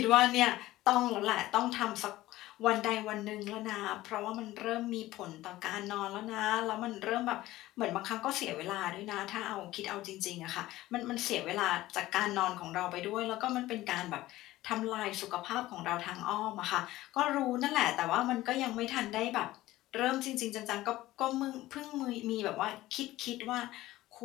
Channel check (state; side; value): quieter; right; 16.6 dB